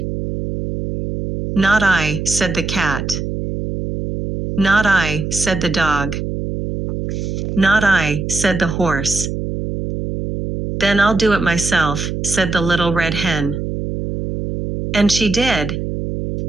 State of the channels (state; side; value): noise; right; hum, 4 dB below the sound